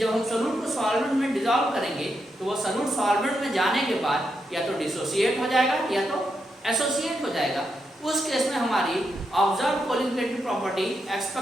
हम सॉल्यूट को सॉल्वेंट में डिसॉल्व करेंगे तो वो सॉल्यूट सॉल्वेंट में जाने के बाद या तो डिसोसिएट हो जाएगा या तो एसोसिएट हो जाएगा। उस केस में हमारी observe colligative property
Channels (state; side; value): normal; both; correlation 0.83